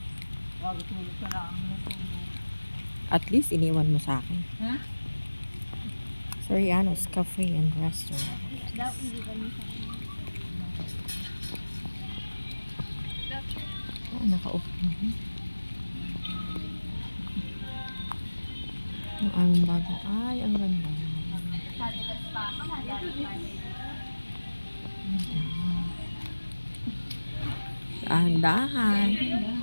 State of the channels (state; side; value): inverted; both; correlation -1.00